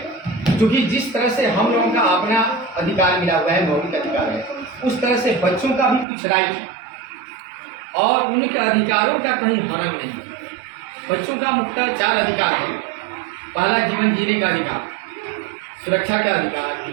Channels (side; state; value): left; drops out; at 6.1 s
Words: क्योंकि जिस तरह से हम लोगों का अपना अधिकार मिला हुआ है, मौलिक अधिकार है, उस तरह से बच्चों का भी कुछ राइट है और उनके अधिकारों का कहीं हनन नहीं है। बच्चों का मुख्यतः 4 अधिकार है। पहला, जीवन जीने का अधिकार, सुरक्षा का अधिकार,